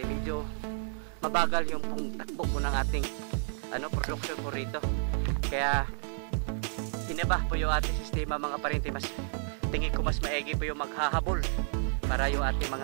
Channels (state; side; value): silent; left; digital silence